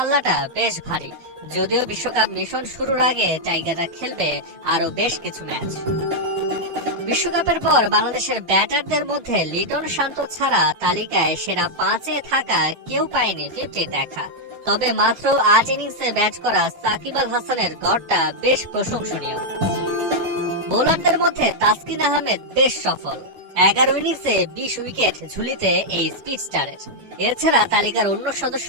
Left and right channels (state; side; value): late; left; 12 ms